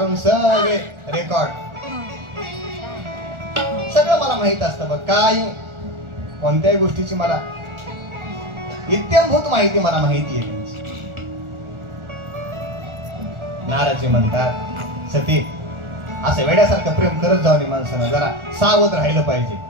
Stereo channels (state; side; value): late; left; 1.4 ms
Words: सगळे रेकॉर्ड, सगळं मला माहित असतं. बघ, काही कोणत्याही गोष्टीची मला इत्यंभूत माहिती मला माहिती आहे. नारदजी म्हणतात, सती, असं वेड्यासारखं प्रेम करत जाऊ नये. माणसानं जरा सावध राहिलं पाहिजे.